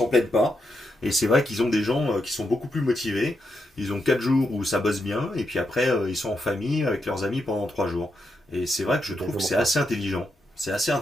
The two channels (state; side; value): normal; both; correlation 0.83